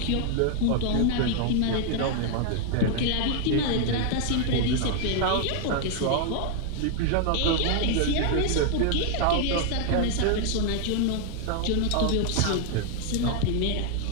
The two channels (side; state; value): both; different; correlation 0.00